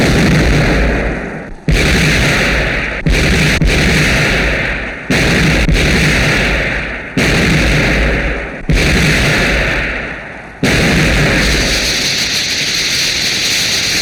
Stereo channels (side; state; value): both; identical; correlation 1.00